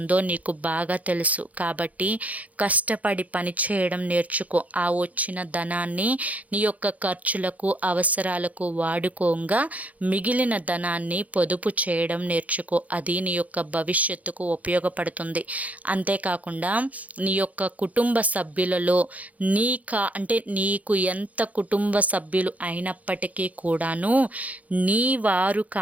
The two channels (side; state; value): left; late; 0.072 ms